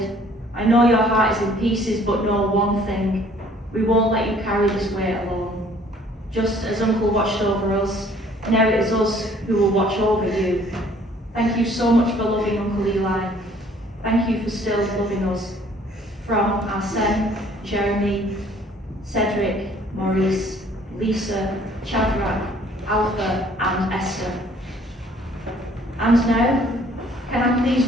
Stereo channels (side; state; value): both; normal; correlation 0.58